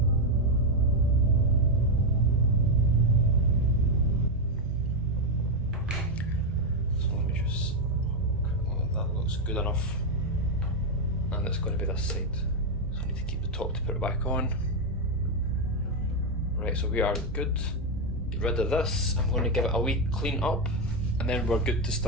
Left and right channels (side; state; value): both; normal; correlation 0.04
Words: Good enough, and it's going to be this side, so I need to keep the top to put it back on. Right, so we are good. Get rid of this. I'm going to give it a wee clean up and then we're good to